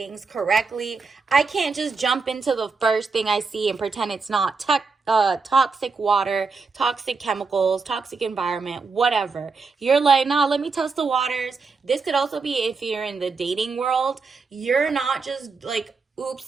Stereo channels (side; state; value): left; quieter; 4.6 dB